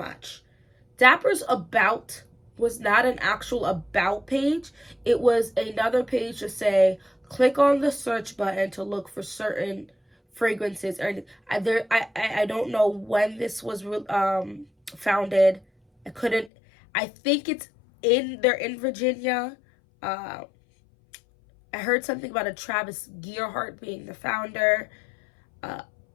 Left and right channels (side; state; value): right; drops out; at 16.5 s